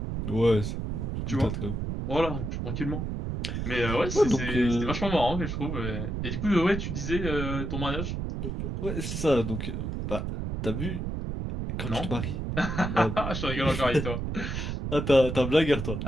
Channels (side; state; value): right; noise; rumble, 3 dB below the sound